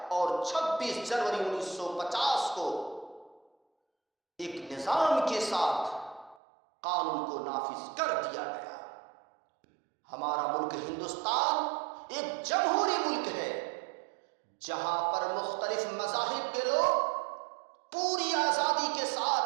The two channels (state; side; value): drops out; left; at 6.4 s